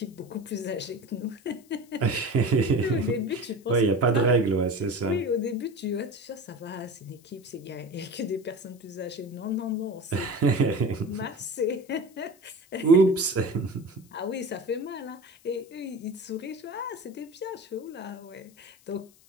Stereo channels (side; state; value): left; noise; hiss, 28 dB below the sound